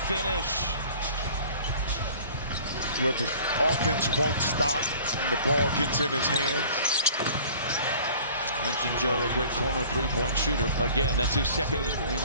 finish. Where the offense won't stop and the ball gets in his hands. Mentioned Joe, a great corner three-point shooter. Again, that's his second.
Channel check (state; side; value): inverted; both; correlation -0.48